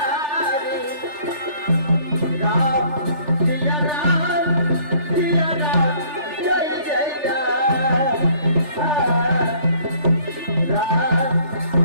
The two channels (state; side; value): late; left; 3.4 ms